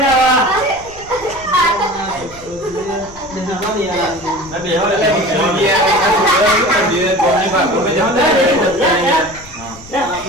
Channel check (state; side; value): noise; left; rumble, 20 dB below the sound